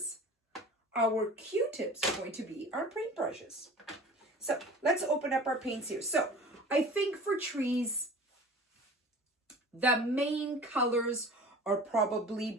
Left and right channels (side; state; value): both; normal; correlation 0.41